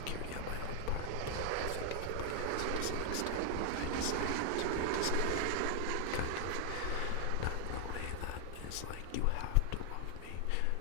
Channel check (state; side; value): different; both; correlation 0.00